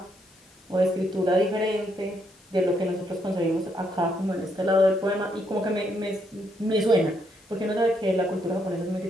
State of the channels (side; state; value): left; noise; hiss, 30 dB below the sound